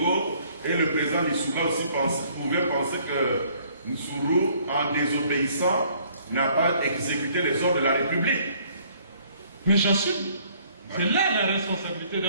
et le président Lissouba aussi pouvaient penser que Nsuru, en désobéissant, n'a pas exécuté les ordres de la République. Mais j'assume. C'est là la responsabilité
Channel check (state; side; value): inverted; both; correlation -0.61